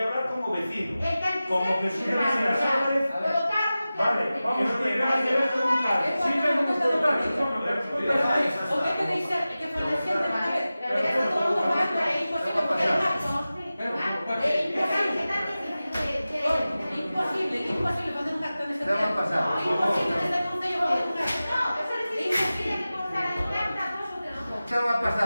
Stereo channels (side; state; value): both; inverted; correlation -0.96